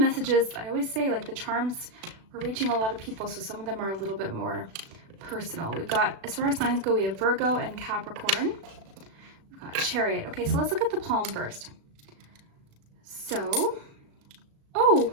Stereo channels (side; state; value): left; late; 36 ms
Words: I always say, like the charms, we're reaching a lot of people, so some of them are a little bit more personal. We've got, as far as signs go, we have Virgo and Capricorn. We've got Chariot. Okay, so let's look at the palm first. So, oh,